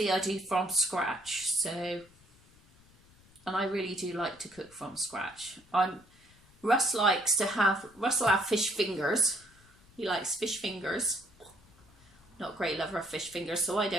I do from scratch, so... And I really do like to cook from scratch. Russ will have fish fingers. He likes fish fingers. Not a great lover of fish fingers, so I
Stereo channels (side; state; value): left; noise; rumble, 28 dB below the sound